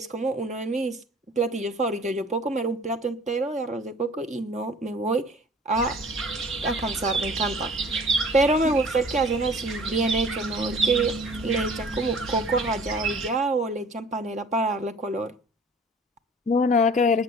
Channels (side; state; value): both; normal; correlation 0.49